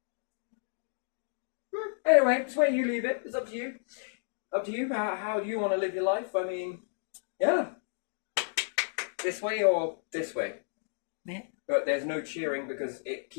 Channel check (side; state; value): right; silent; digital silence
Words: Anyway, it's where you leave it. It's up to you. Up to you. How do you want to live your life? I mean, yeah. This way or this way. Yeah. But there's no cheering because it